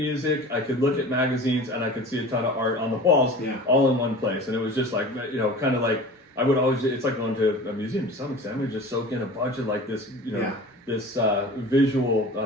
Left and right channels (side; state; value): both; normal; correlation 0.38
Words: I could look at magazines, and I could see a ton of art on the walls, all in one place. And it was just kind of like I would always. It's like going to a museum to some extent. We just soak in a bunch of this, this